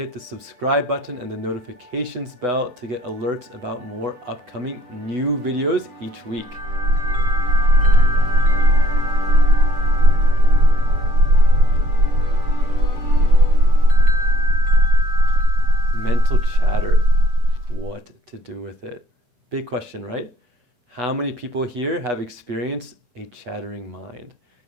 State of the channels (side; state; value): left; late; 8.1 ms